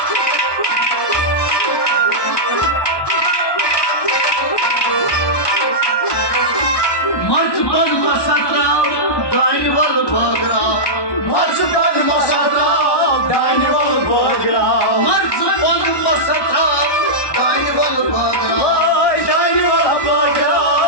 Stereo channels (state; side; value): late; right; 1.2 ms